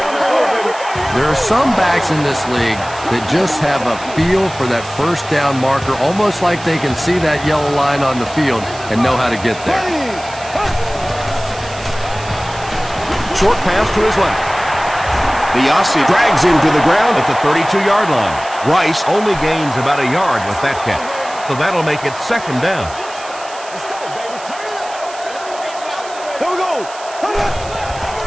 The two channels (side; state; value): right; noise; hiss, 16 dB below the sound